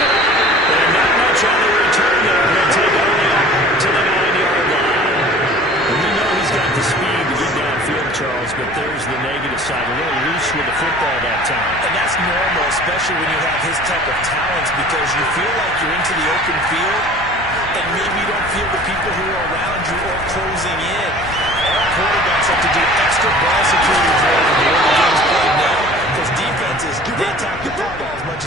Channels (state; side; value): noise; left; hum, 21 dB below the sound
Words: up. And not much on the return there. He'll take it only up to the 9-yard line. And we know he's got the speed to get downfield, Charles, but there's the negative side. A little loose with the football that time. And that's normal, especially when you have his type of talents, because you feel like you're into the open field, and maybe you don't feel the people who are around you or closing in. All quarterbacks have to do extra ball security drill when the early game's played now, because defenses, they attack the football as much